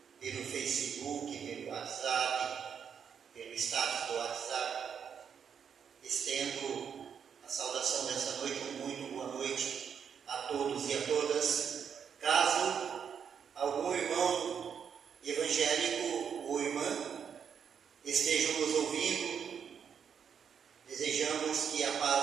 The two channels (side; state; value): left; quieter; 7.4 dB